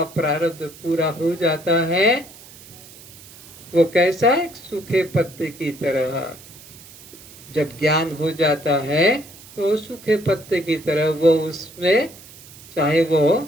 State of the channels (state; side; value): noise; right; hiss, 20 dB below the sound